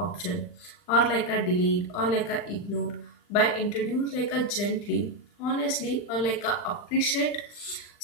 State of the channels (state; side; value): late; right; 40 ms